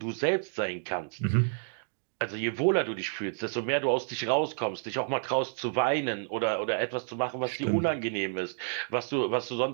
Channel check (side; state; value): left; silent; digital silence